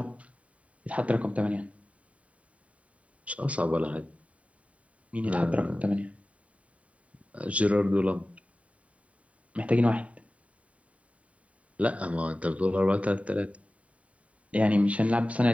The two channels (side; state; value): left; late; 0.066 ms